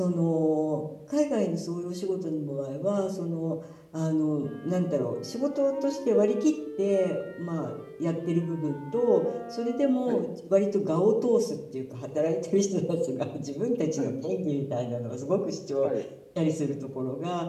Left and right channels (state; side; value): identical; both; correlation 1.00